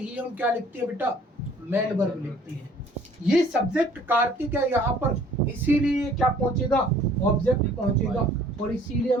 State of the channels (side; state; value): both; normal; correlation 0.55